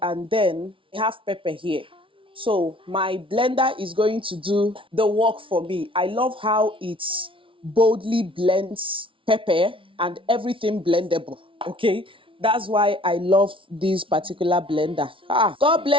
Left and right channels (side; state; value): left; late; 0.25 ms